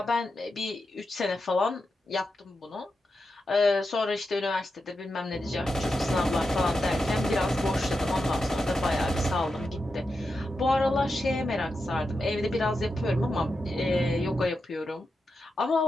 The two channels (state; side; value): normal; both; correlation 0.88